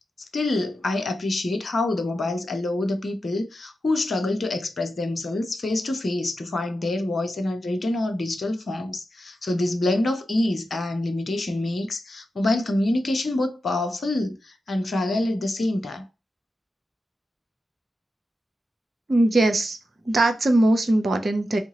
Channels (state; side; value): normal; both; correlation 0.90